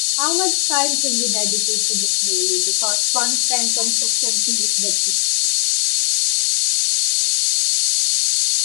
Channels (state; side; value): silent; right; 67 dB below the other